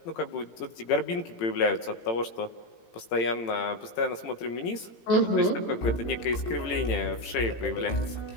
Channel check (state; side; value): late; right; 18 ms